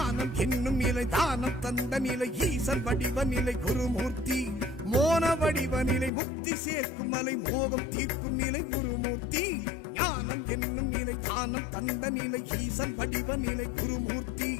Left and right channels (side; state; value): right; drops out; at 6.1 s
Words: என்னும் நிலை தானம் தந்த நிலை ஈசன் வடிவ நிலை குருமூர்த்தி மோன வடிவ நிலை முக்தி சேர்க்கும் மலை மோகம் தீர்க்கும் நிலை குருமூர்த்தி ஞானம் என்னும் நிலை தானம் தந்த நிலை ஈசன் வடிவ நிலை குருமூர்த்தி